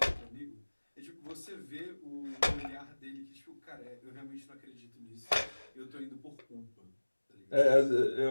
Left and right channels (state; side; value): inverted; both; correlation -1.00